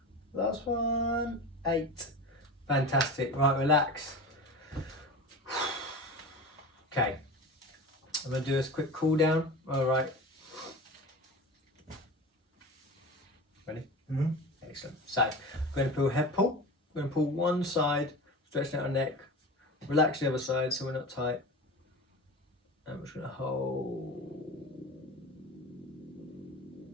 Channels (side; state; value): both; normal; correlation 0.31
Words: Last one. 8. Fantastic. Right, relax. Okay. I'm going to do this quick cool down. All right. Ready? Mm-hmm. Excellent. So, I'm going to pull head pull. I'm going to pull one side, stretching out our neck. Relax the other side so we're not tight. And we're just going to hold.